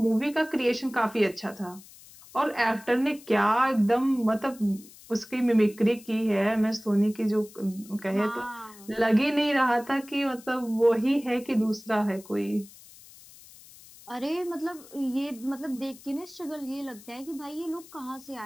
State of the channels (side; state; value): left; noise; hiss, 21 dB below the sound